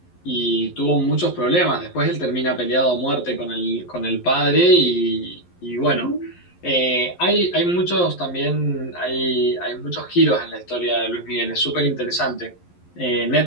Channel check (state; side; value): late; right; 11 ms